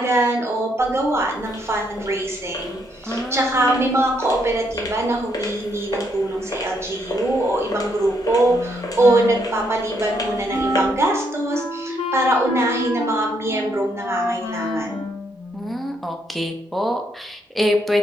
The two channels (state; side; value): normal; both; correlation 0.74